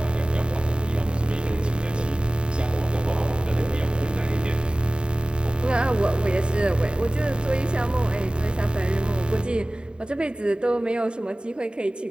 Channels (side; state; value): left; late; 0.051 ms